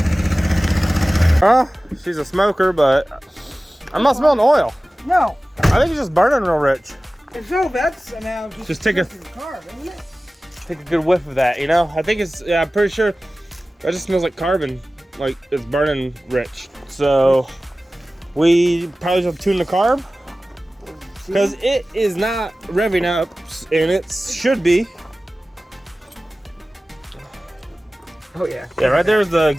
Huh? She's a smoker, but I'm not smelling oil. No. I think it's just burning real rich. If so, that's now Just take a carb, isn't it? take a good whiff of that, you know? I think it's, yeah, I'm pretty sure that just smells like carbon, like it's burning rich. So we probably just tune the carb because it is not revving up, and it should be. Oh yeah. Yeah, right there's the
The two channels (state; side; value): normal; both; correlation 0.97